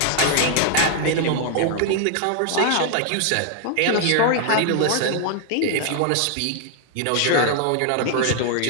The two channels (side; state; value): both; different; correlation 0.00